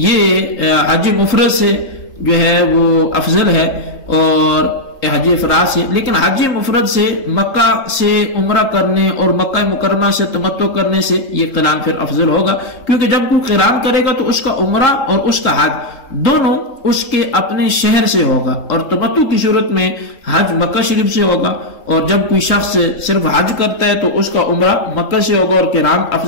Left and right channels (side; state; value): right; late; 3.8 ms